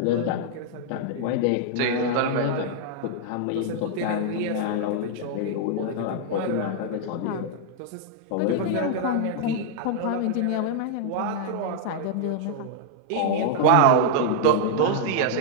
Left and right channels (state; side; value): different; both; correlation -0.01